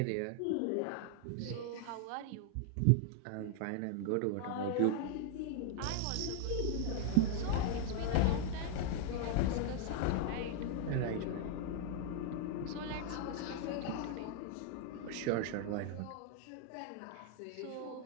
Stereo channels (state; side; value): different; both; correlation 0.00